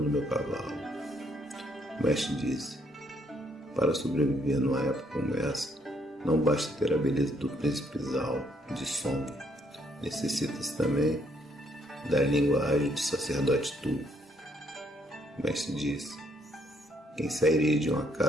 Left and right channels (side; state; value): both; normal; correlation 0.70